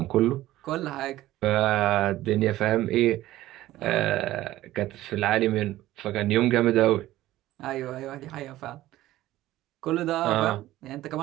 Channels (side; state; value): left; quieter; 15.5 dB